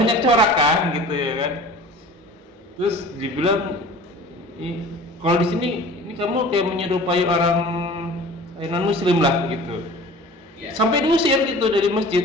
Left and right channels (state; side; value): normal; both; correlation 0.43